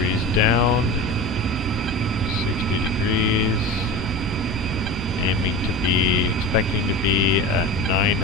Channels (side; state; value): both; normal; correlation 0.30